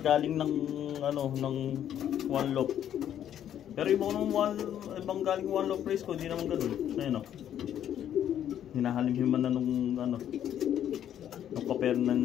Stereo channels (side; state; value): right; quieter; 10.4 dB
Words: ng one loop. Pero ibang galing one loop race ko, hindi naman ganoon. Ayun hinahalimhiman na nung